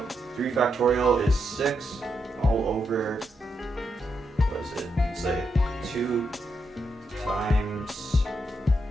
3 factorial is 6 all over, what is it? Let's say 2 times,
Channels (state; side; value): normal; both; correlation 0.82